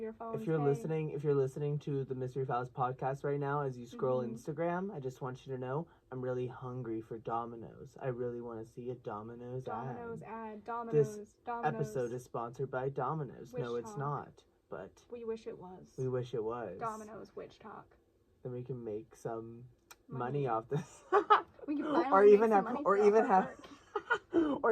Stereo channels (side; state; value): both; identical; correlation 1.00